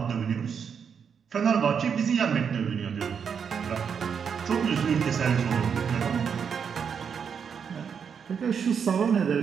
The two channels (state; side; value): quieter; left; 6.9 dB